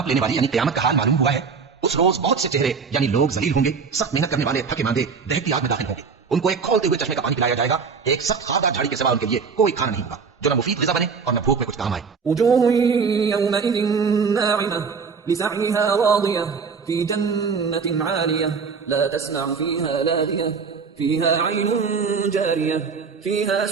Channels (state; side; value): quieter; left; 5.4 dB